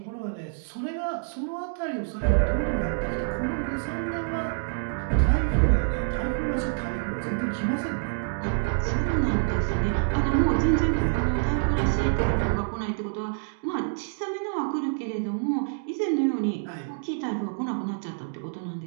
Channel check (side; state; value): left; silent; digital silence